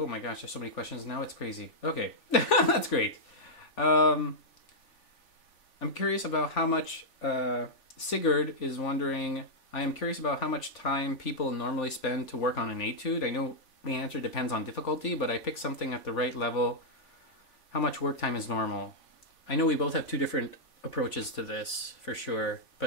my gosh, there's so many questions now. It's crazy. Okay, that's great. I'm curious about how much. Sigurd is wondering. I am curious about how much time people normally spend to work on an etude. I know the answer depends on difficulty, but I pick something at the right level how much work time is normal. I know we both have two different approaches to this for sure,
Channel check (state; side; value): late; right; 3.5 ms